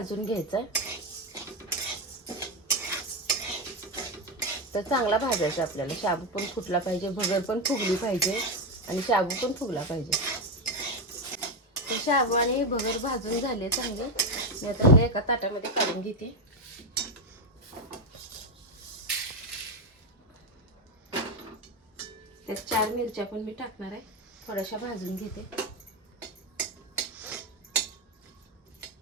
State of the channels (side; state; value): both; normal; correlation 0.09